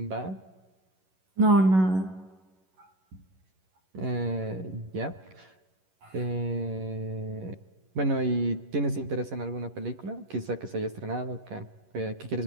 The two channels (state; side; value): late; left; 11 ms